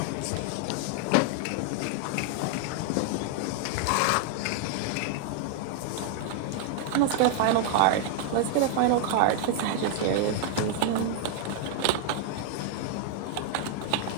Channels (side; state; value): both; different; correlation 0.00